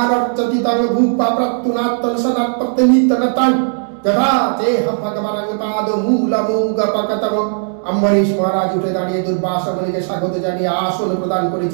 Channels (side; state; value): left; silent; 69 dB below the other